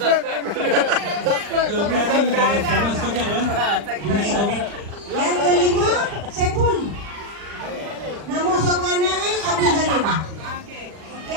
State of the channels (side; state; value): left; late; 39 ms